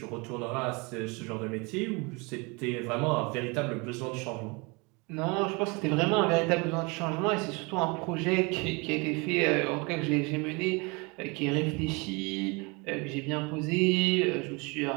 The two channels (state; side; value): quieter; left; 28.6 dB